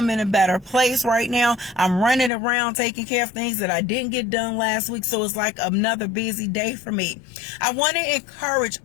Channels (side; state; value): right; drops out; at 2.3 s